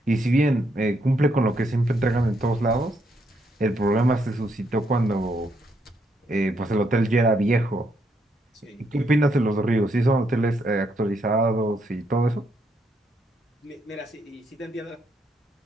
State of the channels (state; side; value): normal; both; correlation 0.76